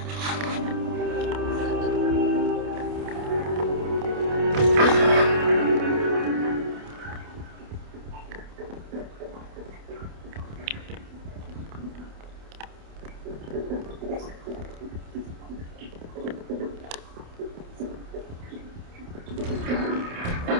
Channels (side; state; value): left; late; 28 ms